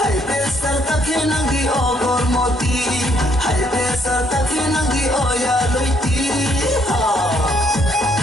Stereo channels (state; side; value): normal; both; correlation 0.69